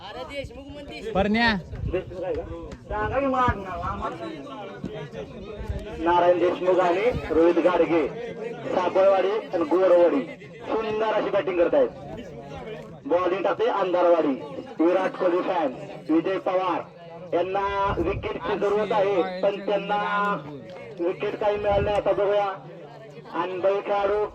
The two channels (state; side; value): identical; both; correlation 1.00